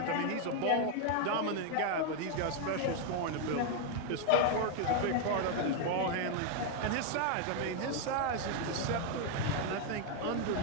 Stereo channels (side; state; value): both; different; correlation 0.01